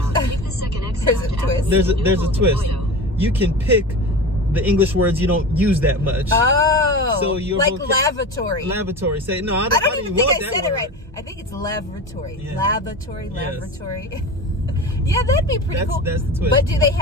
the second exit. There's a twist. There's a twist. You can pick the English words you don't use that much. Oh, so you're like lavatory. Lavatory. Say no. I don't even think I said word. it right. I think it's lavatory. Yeah. Lavatory. Yes. Yeah, that'd be pretty cool. That's the twist. But do they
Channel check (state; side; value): normal; both; correlation 0.29